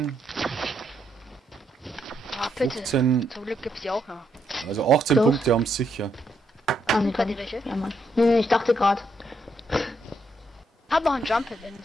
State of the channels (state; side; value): normal; both; correlation 0.77